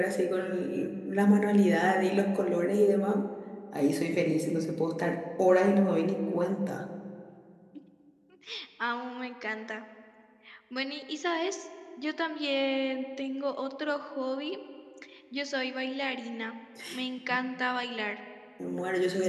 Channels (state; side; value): identical; both; correlation 1.00